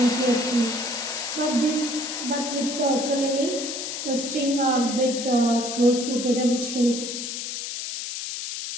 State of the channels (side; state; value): left; noise; hiss, 5 dB below the sound